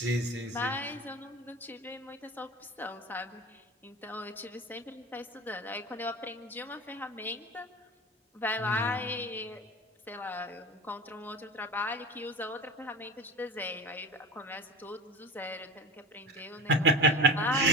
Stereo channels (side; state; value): both; normal; correlation 0.30